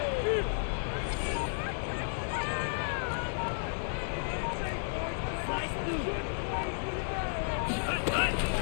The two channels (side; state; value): right; silent; digital silence